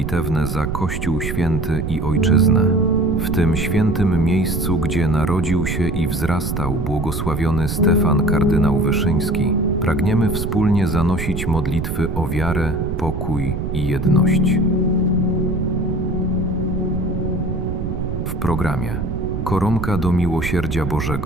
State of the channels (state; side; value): noise; right; rumble, 3 dB below the sound